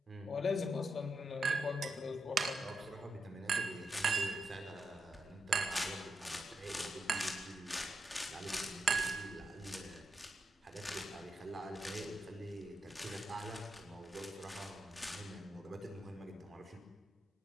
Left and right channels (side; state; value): both; normal; correlation 0.84